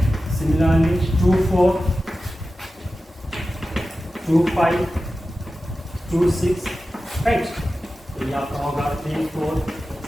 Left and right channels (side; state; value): both; normal; correlation 0.94